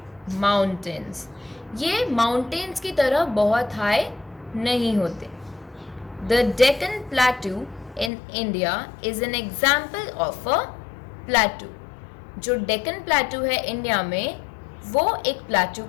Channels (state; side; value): drops out; right; at 8.1 s